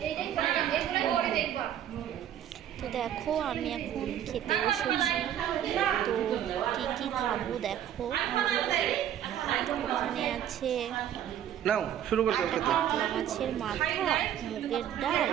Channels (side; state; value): left; quieter; 10.4 dB